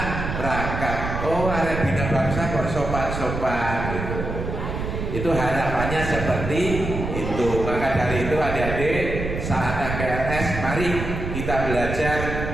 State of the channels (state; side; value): noise; right; rumble, 5 dB below the sound